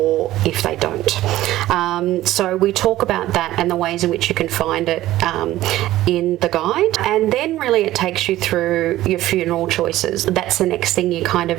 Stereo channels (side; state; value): left; quieter; 15.2 dB